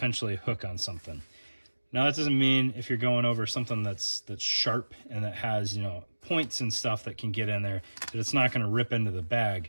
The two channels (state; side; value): inverted; both; correlation -1.00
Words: hook on something. Now that doesn't mean if you're going over something that's sharp and that has, you know, points and stuff that can get in there, that it's not going to rip into the